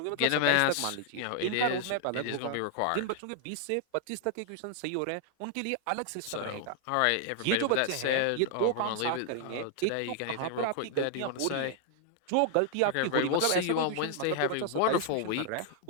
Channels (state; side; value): different; both; correlation 0.00